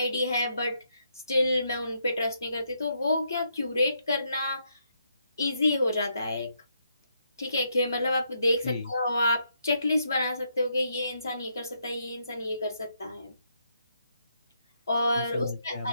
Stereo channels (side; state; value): both; inverted; correlation -0.77